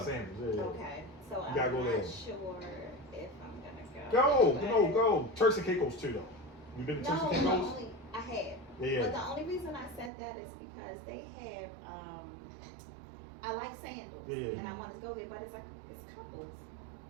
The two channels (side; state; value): left; drops out; at 10.1 s